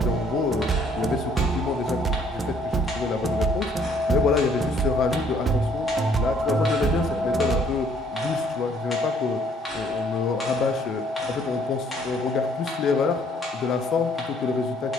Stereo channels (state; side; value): normal; both; correlation 0.63